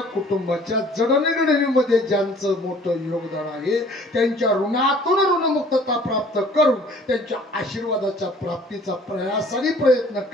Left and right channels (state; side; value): normal; both; correlation 0.53